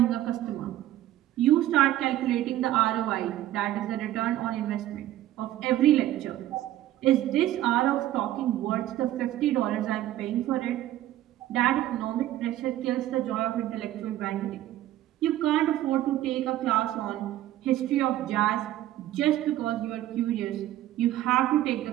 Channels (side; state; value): left; quieter; 13.9 dB